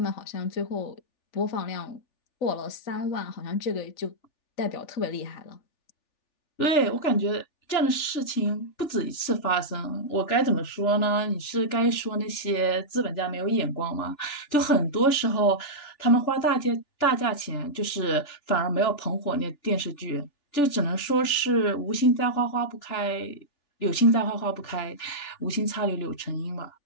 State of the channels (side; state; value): right; late; 3.4 ms